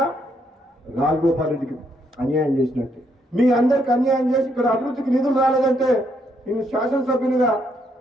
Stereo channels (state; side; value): normal; both; correlation 0.74